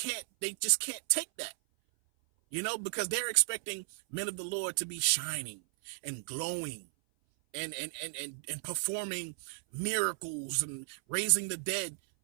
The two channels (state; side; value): silent; left; 55 dB below the other